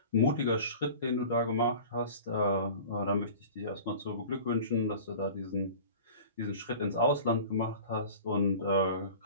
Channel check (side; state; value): both; inverted; correlation -0.40